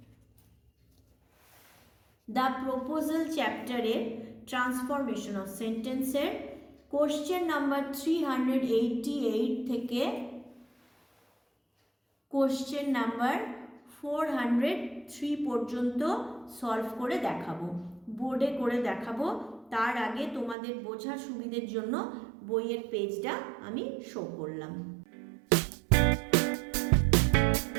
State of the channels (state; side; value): drops out; left; at 20.6 s